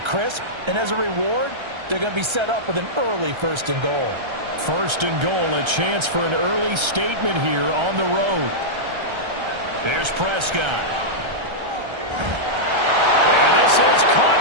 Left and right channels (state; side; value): late; left; 1.3 ms